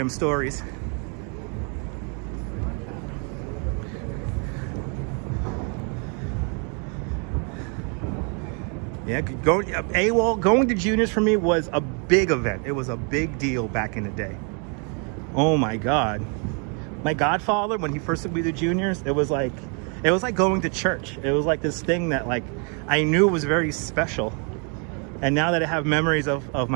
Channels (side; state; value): left; quieter; 37.7 dB